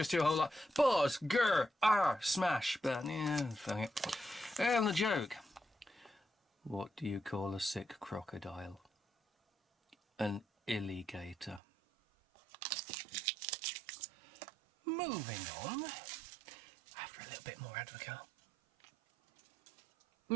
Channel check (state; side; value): drops out; left; at 11.6 s